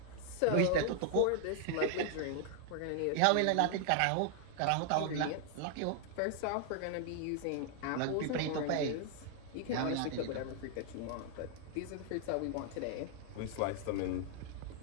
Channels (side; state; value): both; different; correlation 0.00